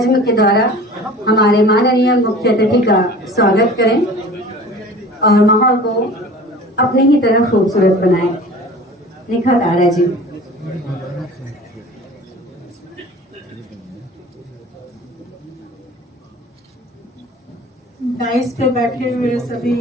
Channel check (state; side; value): normal; both; correlation 0.42